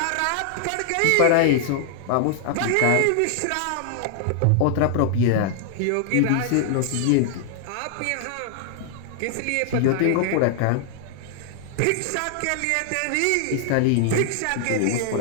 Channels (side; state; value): both; different; correlation 0.00